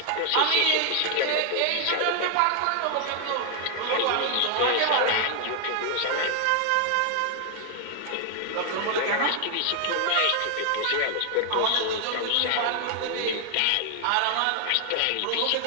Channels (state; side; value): different; both; correlation 0.00